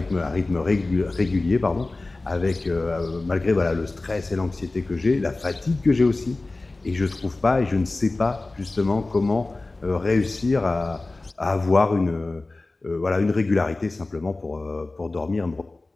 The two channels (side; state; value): right; quieter; 3.2 dB